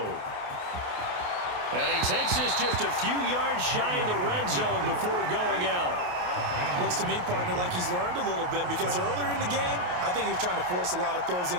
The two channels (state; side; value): late; left; 28 ms